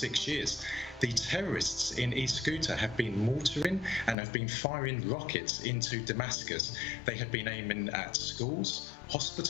years, the terrorists in East Ghouta have been mortaring and have been firing rockets into Damascus. They have been aiming at schools,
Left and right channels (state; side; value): drops out; right; at 4.2 s